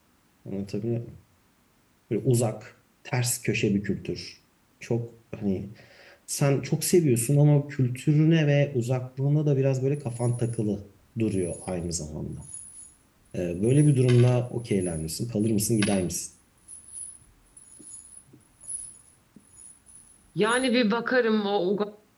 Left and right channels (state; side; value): identical; both; correlation 1.00